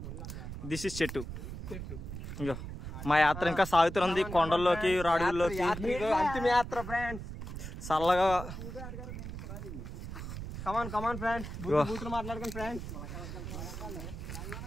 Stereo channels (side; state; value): right; noise; rumble, 8 dB below the sound